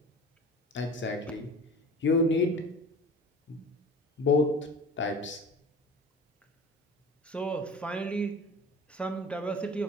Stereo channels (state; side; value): normal; both; correlation 0.39